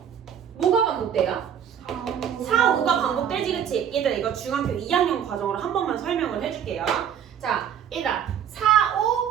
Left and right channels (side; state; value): left; quieter; 8.9 dB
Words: 뭐가 반복돼요? 4, 5가 반복되지, 그치? 얘들아, 이거 중학교 2학년 과정으로 한 번만 설명을 해줄게요. 자, 얘들아, 4,